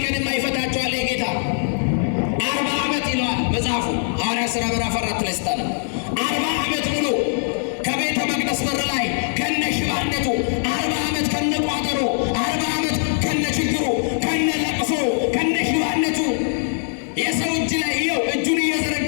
ቀን የማይፈታቸዋል የጌታ 40 ዓመት ይለዋል መጽሐፉ ሐዋርያት ሥራ ምዕራፍ 4 ላይ ስታነ 40 ዓመት ሙሉ ከቤተ መቅደስ በር ላይ ከነ ሽባነቱ 40 ዓመት ከነ ቋጠሮ 40 ዓመት ከነ ችግሩ ከነ ለቅሶ ከነ ሽባነቱ የሰው እጅ ላይ ይኸው እጁን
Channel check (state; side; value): silent; right; 65 dB below the other